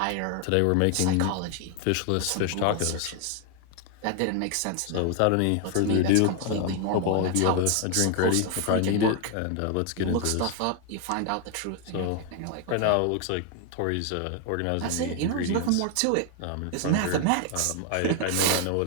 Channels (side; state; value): both; different; correlation 0.01